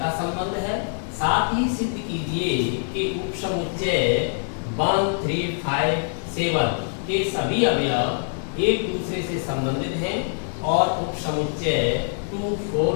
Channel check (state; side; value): silent; right; digital silence